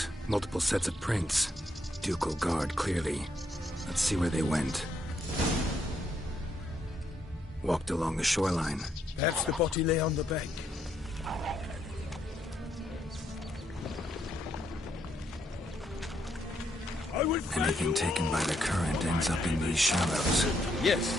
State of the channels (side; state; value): both; normal; correlation 0.76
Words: multiple sets of prints. Ducal guard, clearly. Let's see where they went. Walked along the shoreline. Perhaps the body lay on the bank. Anything taken by the current ends up in these shallows.